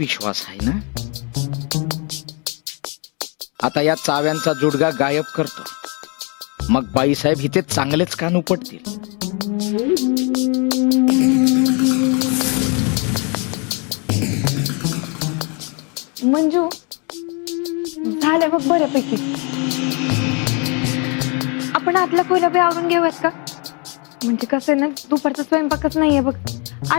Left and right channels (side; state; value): right; quieter; 33.5 dB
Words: आहे ना. आता या चाव्यांचा जुडगा गायब करतो, मग बाईसाहेब इथे चांगलेच कान उपटतील. मंजू, झालं बघ बऱ्यापैकी. आपण आतला खोल्या बी आवरून घेऊयात का? म्हणजे कसं आहे ना, दुपारचा स्वयंपाकच नाहीये बघ.